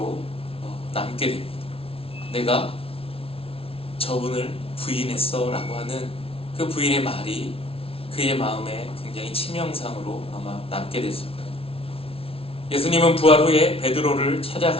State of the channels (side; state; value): right; late; 0.27 ms